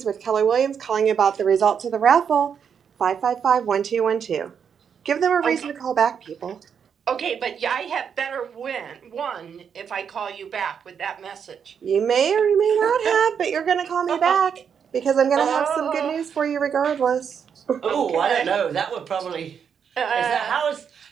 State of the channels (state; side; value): quieter; left; 7.3 dB